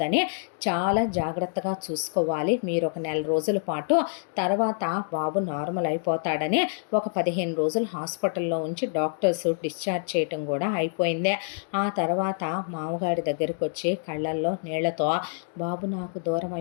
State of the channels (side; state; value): right; silent; digital silence